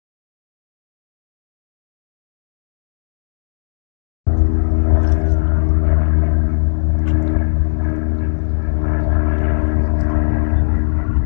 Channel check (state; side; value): silent; right; digital silence